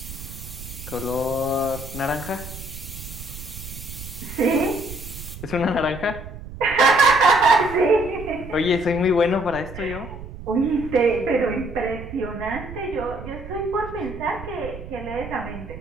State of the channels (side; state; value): right; noise; rumble, 12 dB below the sound